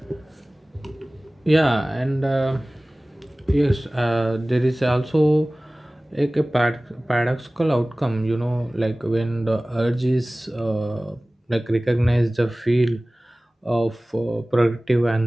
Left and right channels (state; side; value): normal; both; correlation 0.98